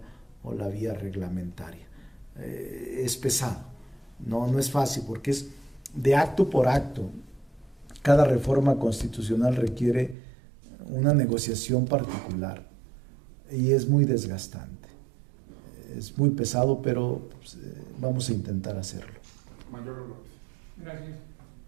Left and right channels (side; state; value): left; drops out; at 10.2 s